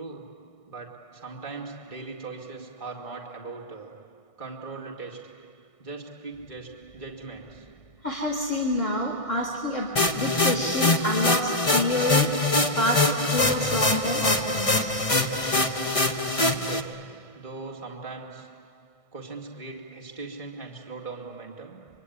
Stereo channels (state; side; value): late; right; 1.6 ms